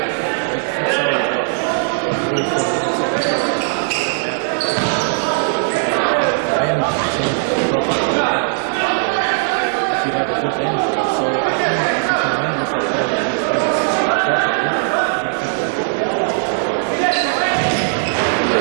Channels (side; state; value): left; silent; 59 dB below the other